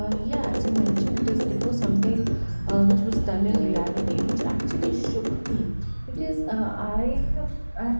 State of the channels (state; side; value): inverted; both; correlation -1.00